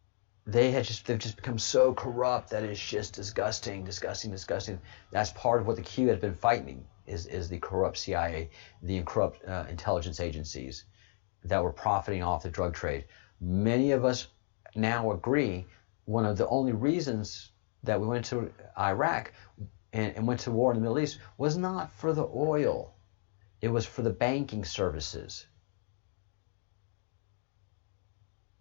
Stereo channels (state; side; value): silent; right; 56 dB below the other